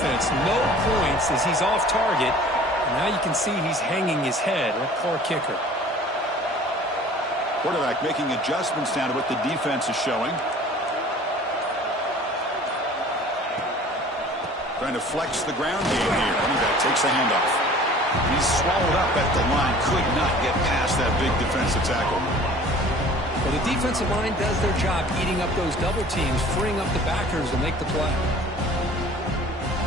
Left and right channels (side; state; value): both; normal; correlation 0.47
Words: No points as he's off target. And now you can see he's hanging his head. What poor kicker. Quarterback making adjustments down to what the defense is showing. Trying to flex the ground game here. That takes a handoff. He's swallowed up at the line. Could not get past that big defensive tackle. Well, the defensive line does their job eating up those double teams, freeing up the backers to make the play.